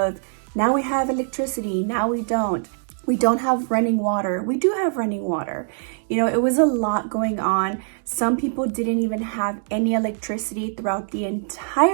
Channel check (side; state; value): left; silent; digital silence